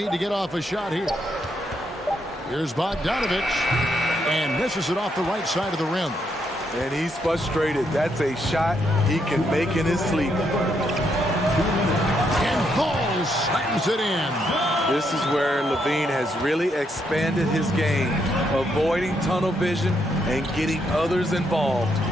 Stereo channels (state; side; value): normal; both; correlation 0.77